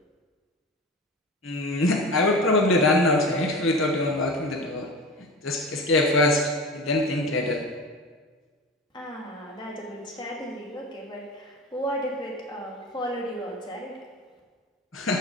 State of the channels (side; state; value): both; normal; correlation 0.32